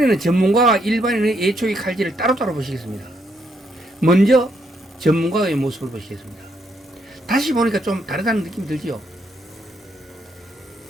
전문가와 일반인의 예초기 칼질을 따로따로 보시겠습니다. 먼저 전문가의 모습을 보시겠습니다. 다시 보니까 좀 다르다는 느낌이 들지요.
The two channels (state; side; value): normal; both; correlation 0.75